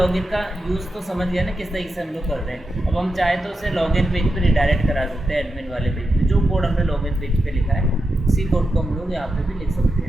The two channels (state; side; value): normal; both; correlation 0.88